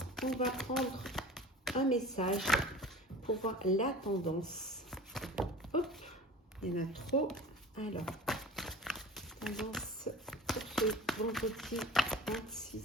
on va prendre un message pour voir la tendance. Hop, il y en a trop. Alors, tendance pour ce vendredi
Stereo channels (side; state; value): both; normal; correlation 0.39